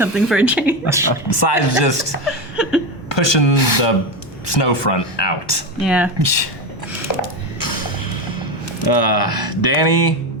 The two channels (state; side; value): normal; both; correlation 0.16